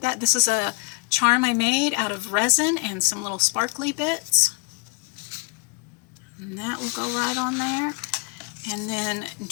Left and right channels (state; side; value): quieter; right; 32.3 dB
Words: that. This is a charm I made out of resin and some little sparkly bits. And that will go right on there. And then